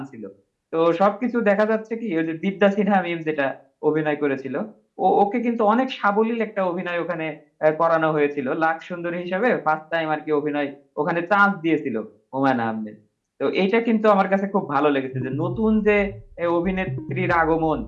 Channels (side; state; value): both; identical; correlation 1.00